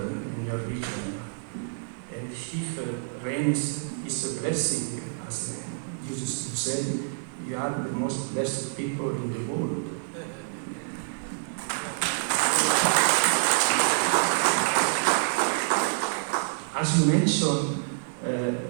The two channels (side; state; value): left; silent; digital silence